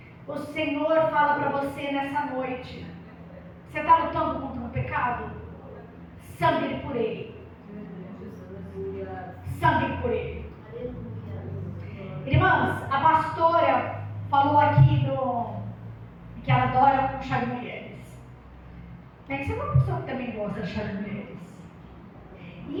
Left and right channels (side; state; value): both; identical; correlation 1.00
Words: O Senhor fala para você nessa noite: você está lutando contra o pecado? Sangue por ele. Sangue por ele. Irmãs, a pastora falou aqui que ela adora chá de mulheres. Bem, você é uma pessoa que também gosta de chá de mulheres.